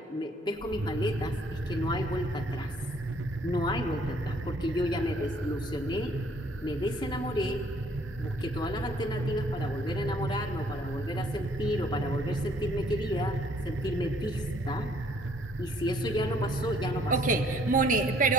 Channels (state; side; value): normal; both; correlation 0.62